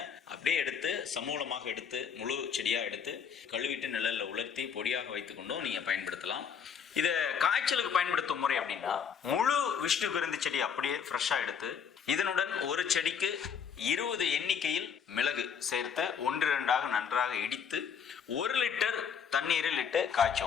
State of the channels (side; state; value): right; quieter; 7.1 dB